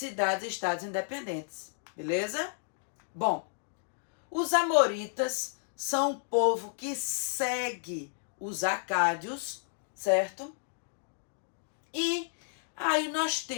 e estados independentes. Beleza? Bom, os amoritas são um povo que segue os acádios, certo? E aí nós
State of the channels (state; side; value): silent; right; digital silence